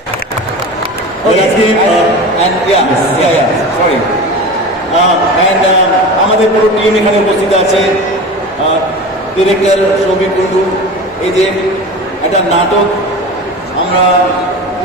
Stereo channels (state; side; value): normal; both; correlation 0.31